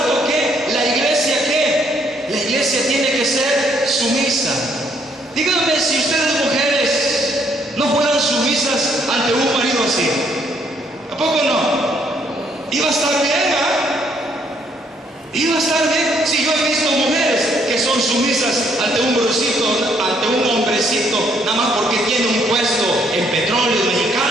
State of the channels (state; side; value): normal; both; correlation 0.69